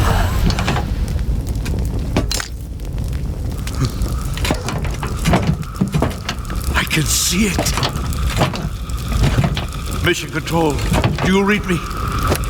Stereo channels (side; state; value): both; identical; correlation 1.00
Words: I can see it. Mission Control, do you read me?